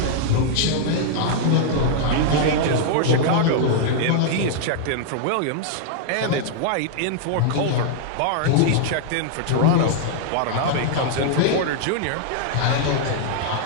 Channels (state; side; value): different; both; correlation -0.01